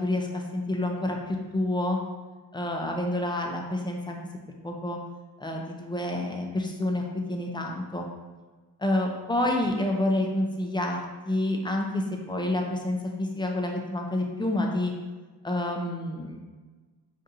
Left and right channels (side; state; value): both; normal; correlation 0.68